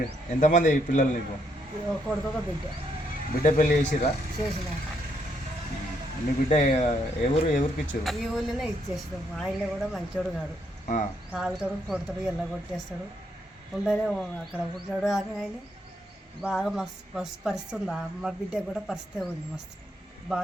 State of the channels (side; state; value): both; normal; correlation 0.75